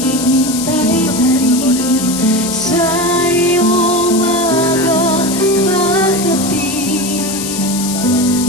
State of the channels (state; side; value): noise; left; hiss, 6 dB below the sound